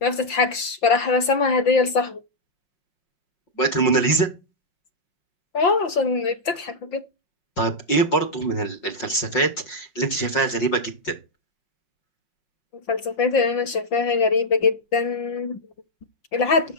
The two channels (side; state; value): right; late; 5.8 ms